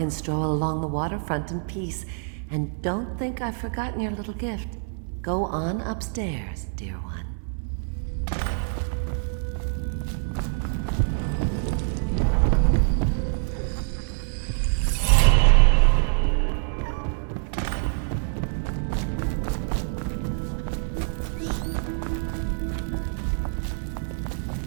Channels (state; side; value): silent; left; 61 dB below the other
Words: stroll along the waterfront in peace. And don't think I've forgotten your little gift. Go on upstairs, dear one.